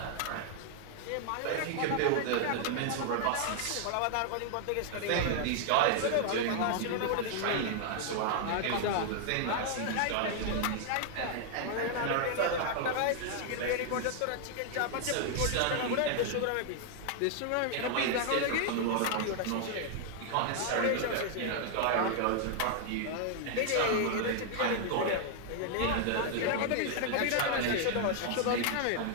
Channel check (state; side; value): different; both; correlation 0.00